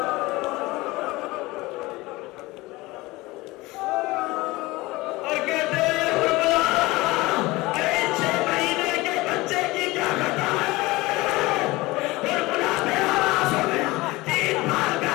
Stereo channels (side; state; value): right; quieter; 20.9 dB